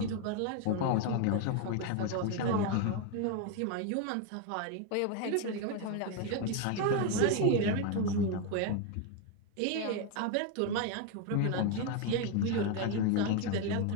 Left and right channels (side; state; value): both; different; correlation 0.02